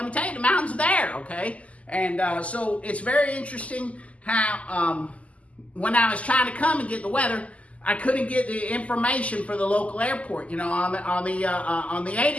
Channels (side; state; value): right; late; 0.067 ms